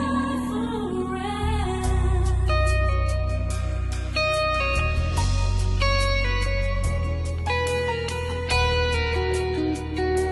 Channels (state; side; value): identical; both; correlation 1.00